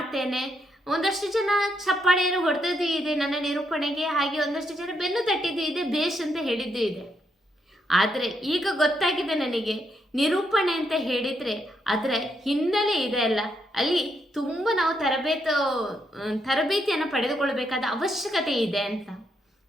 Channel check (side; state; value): both; normal; correlation 0.78